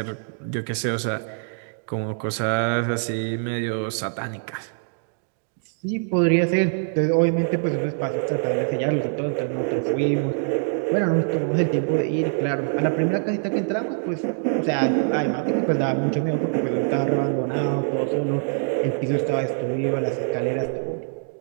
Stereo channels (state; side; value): silent; left; digital silence